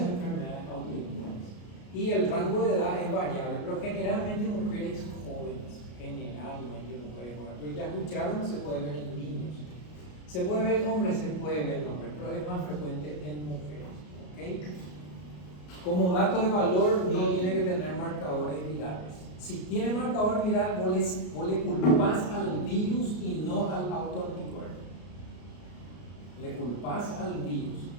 autoinmunes. Y el rango de edad es variable, pero generalmente mujeres jóvenes. Generalmente mujeres jóvenes. Pero ya escucharon, se puede ver en niños. Se puede ver en hombres, se puede ver en hombres, pero es más frecuente en mujeres. ¿Okay? Como dato de valor, no tiene que tener marcadores virales. Si tiene marcador viral, vos le culpás al virus y no al autoanticuerpo. Le culpás al virus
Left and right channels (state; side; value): late; right; 33 ms